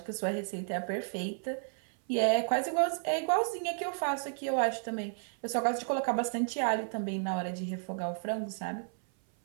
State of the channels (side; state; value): left; silent; 56 dB below the other